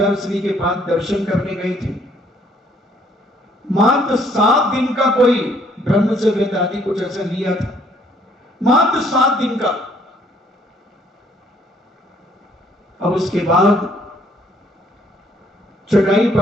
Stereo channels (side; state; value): both; normal; correlation 0.64